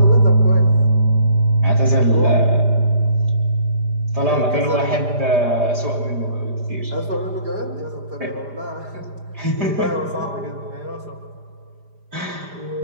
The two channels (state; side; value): late; left; 5.0 ms